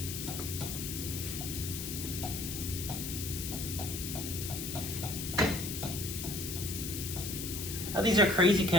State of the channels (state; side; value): noise; left; hiss, 5 dB below the sound